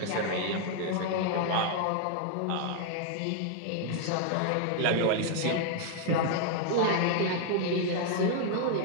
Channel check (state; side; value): different; both; correlation 0.00